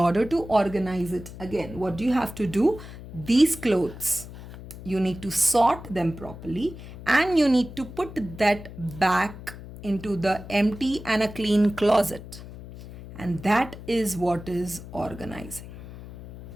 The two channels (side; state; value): left; noise; hum, 14 dB below the sound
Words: to organize it again, what do you have to do? These clothes, you need to sort them properly and you need to put that back into the empty and a clean closet. And that is what is organizing.